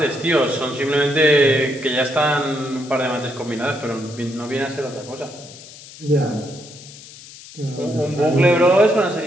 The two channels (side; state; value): left; noise; hiss, 18 dB below the sound